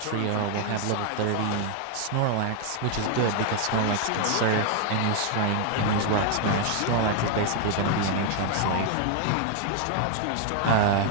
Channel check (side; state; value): both; different; correlation 0.00